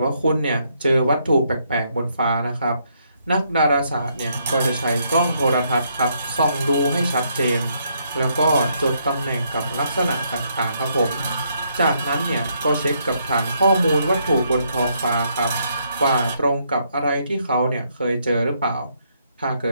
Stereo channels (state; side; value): inverted; both; correlation -0.74